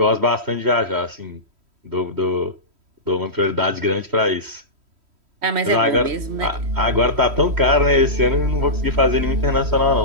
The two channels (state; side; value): late; left; 3.1 ms